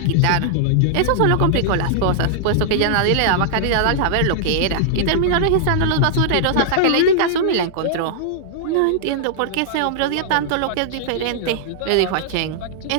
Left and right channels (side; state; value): both; different; correlation -0.01